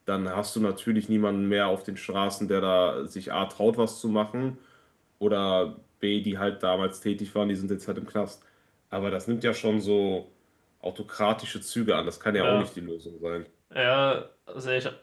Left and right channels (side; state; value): both; identical; correlation 1.00